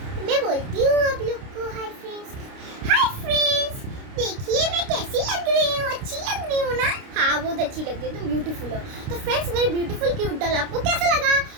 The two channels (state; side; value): late; left; 29 ms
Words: मैं बोलती हूँ आप लोग को। Hi friends. हाय फ्रेंड्स, देखिए मैं कैसी लग रही हूँ। अच्छी लग रही हूँ ना? हाँ बहुत अच्छी लग रही है, तुम ब्यूटीफुल हो। तो फ्रेंड्स, मेरी ब्यूटीफुल क्यूट डॉल आपको कैसा लगा?